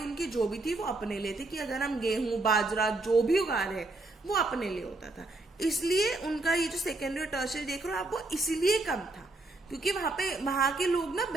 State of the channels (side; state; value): left; quieter; 3.0 dB